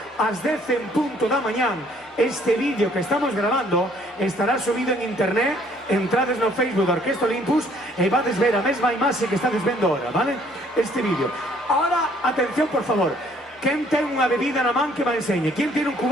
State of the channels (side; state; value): both; normal; correlation 0.61